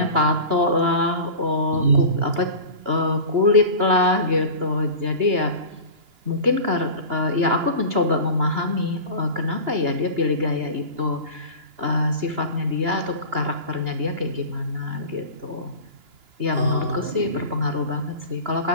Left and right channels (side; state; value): left; late; 2.9 ms